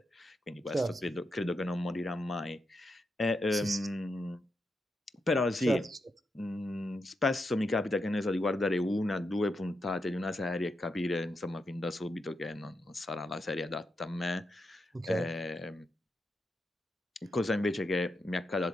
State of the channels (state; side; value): normal; both; correlation 0.85